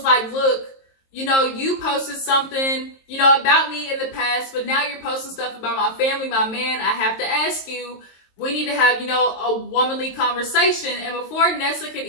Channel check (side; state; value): right; late; 22 ms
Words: like, "Look, you posted something, about me in the past, but now you're posting stuff about my family, my man. I have to ask you, we need to have, a womanly conversation." And before Nessa could